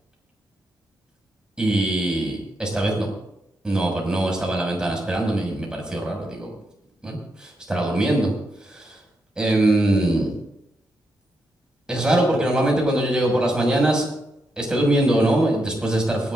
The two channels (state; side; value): normal; both; correlation 0.82